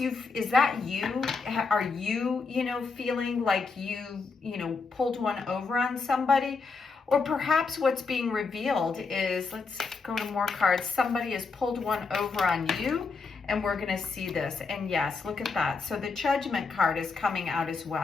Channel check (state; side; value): quieter; right; 4.6 dB